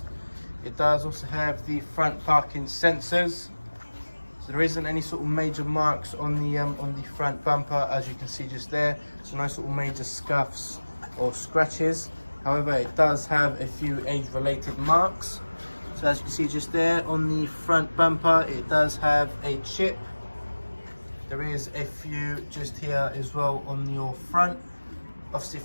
It does also have the front parking sensors. So there isn't any sort of major marks on the front bumper, as you can see just there. So no sort of major scuffs or scratches. However, it does have a few age-related marks. So as you can see just there on the front bumper, it does have a chip. There is a few just here as well on your front. Obviously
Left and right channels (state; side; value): inverted; both; correlation -1.00